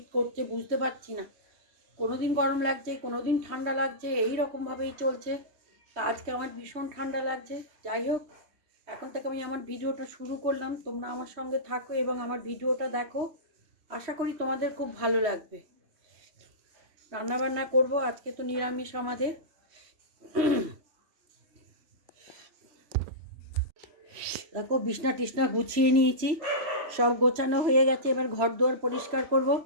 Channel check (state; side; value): late; left; 3.0 ms